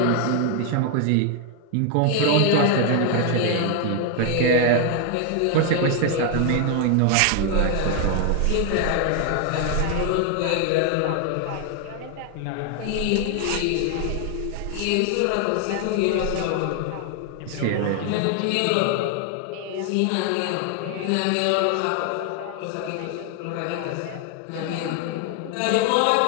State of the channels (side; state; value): both; different; correlation 0.00